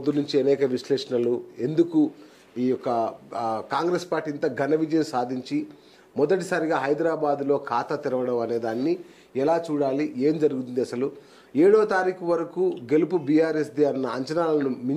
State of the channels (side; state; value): both; identical; correlation 1.00